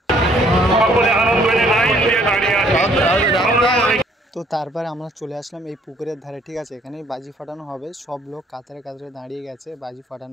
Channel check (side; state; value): both; normal; correlation 0.63